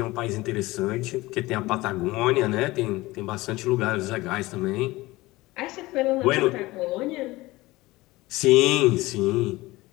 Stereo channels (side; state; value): right; quieter; 20.0 dB